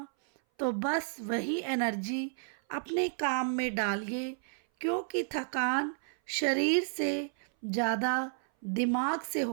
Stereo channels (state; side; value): silent; left; 57 dB below the other